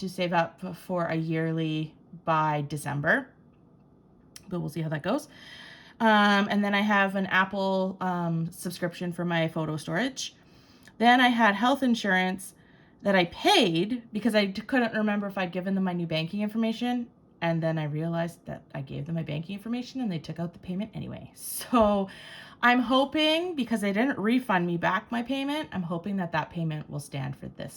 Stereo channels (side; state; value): both; identical; correlation 1.00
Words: save up for a yearly by December, but we'll see how that goes. And then I have an Apple subscription for my photo storage. Then I had health insurance that I paid because I couldn't remember if I'd given them my new banking information. And then I realized that I gave them my banking information and they took out the payment anyway. So I'm hoping, because they didn't refund me back my payment, I'm hoping that that payment will stand for